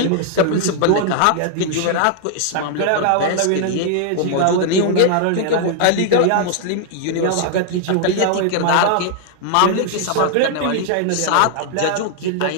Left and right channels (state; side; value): different; both; correlation 0.00